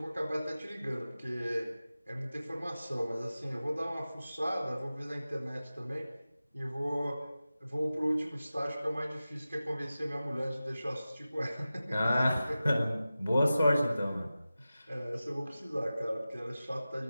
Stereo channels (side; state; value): both; inverted; correlation -0.95